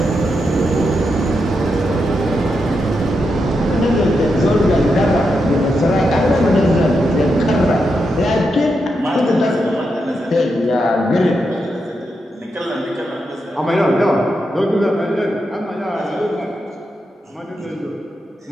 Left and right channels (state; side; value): normal; both; correlation 0.85